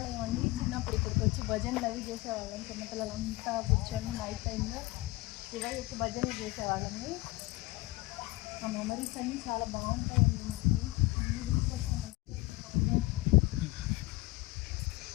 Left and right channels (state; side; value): quieter; right; 20.5 dB